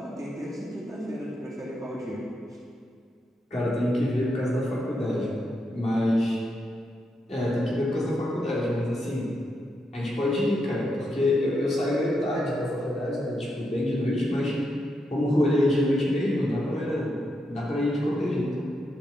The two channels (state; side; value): normal; both; correlation 0.83